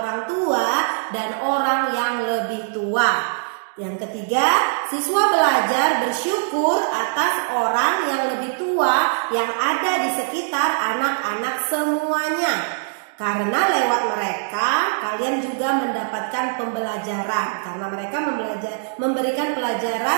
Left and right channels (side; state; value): left; silent; digital silence